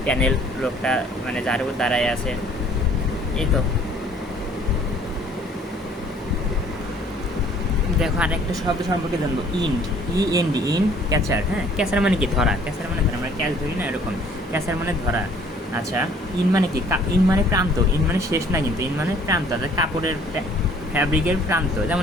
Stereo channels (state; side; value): normal; both; correlation 0.57